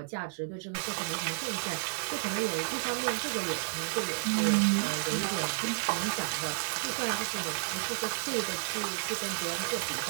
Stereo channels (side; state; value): left; silent; digital silence